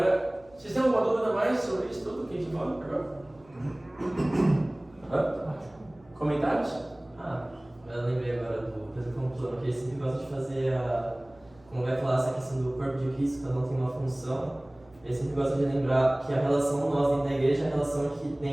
vocês têm alguma dúvida mais sobre isso tudo que a gente falou agora? Comentários? Eu lembrei agora do Pedro Conclano, que ele sempre gosta de fazer como vai falar essa questão do corpo de Cristo, cada um tem uma função. Ele sempre gosta de lembrar que a relação nós dentro da igreja é a relação que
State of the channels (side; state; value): right; noise; hum, 28 dB below the sound